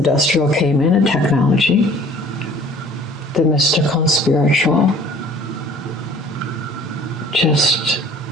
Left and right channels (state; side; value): normal; both; correlation 0.51